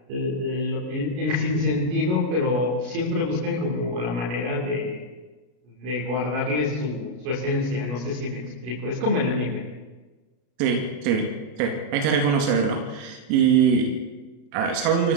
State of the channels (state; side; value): late; left; 33 ms